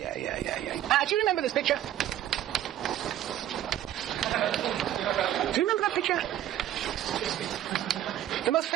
Do you remember this picture? Do you remember that picture? The most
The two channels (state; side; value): quieter; left; 12.0 dB